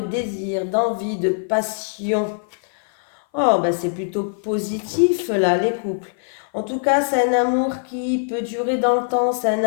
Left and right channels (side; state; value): right; silent; 59 dB below the other